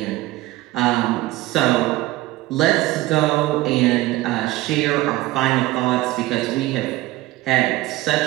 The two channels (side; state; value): left; quieter; 17.7 dB